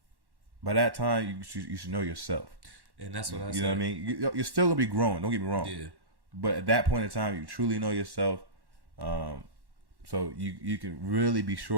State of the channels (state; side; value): late; left; 1.1 ms